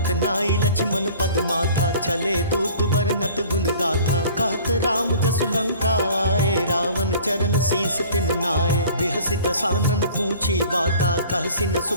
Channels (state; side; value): inverted; both; correlation -0.47